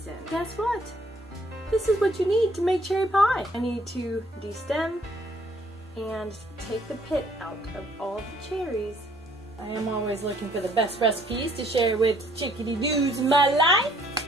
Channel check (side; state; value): both; normal; correlation 0.63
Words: Guess what? This is what you need to make cherry pie. I need to de-stem and take the pit out of all the cherries. I am always looking for the best recipes to share with chick-a-deedoos in my life.